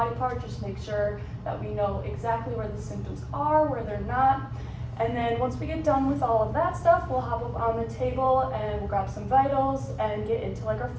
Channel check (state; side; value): identical; both; correlation 1.00